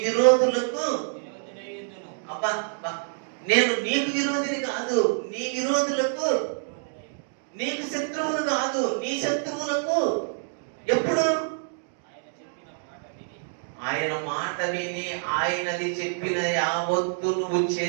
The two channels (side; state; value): left; silent; digital silence